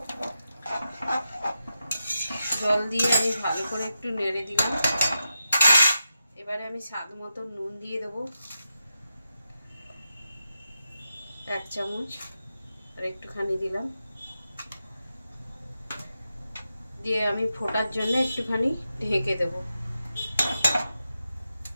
জল দিয়ে আমি ভালো করে একটু নেড়ে দিলাম। এবারে আমি স্বাদ মতো নুন দিয়ে দেবো 1 চামচ, আর একটুখানি দিলাম, দিয়ে আমি ফোটার জন্য একটুখানি ঢেকে দেব।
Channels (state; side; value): inverted; both; correlation -0.89